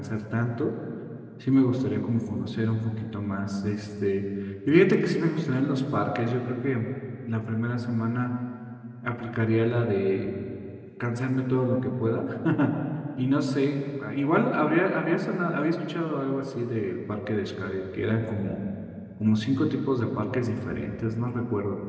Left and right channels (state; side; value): identical; both; correlation 1.00